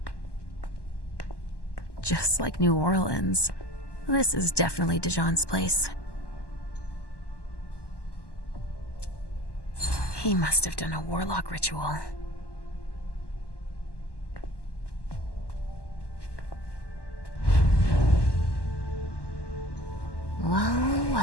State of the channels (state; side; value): late; right; 1.1 ms